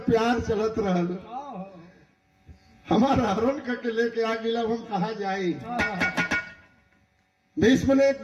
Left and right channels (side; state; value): both; identical; correlation 1.00